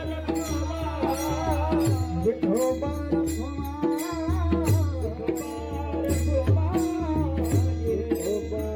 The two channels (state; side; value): identical; both; correlation 1.00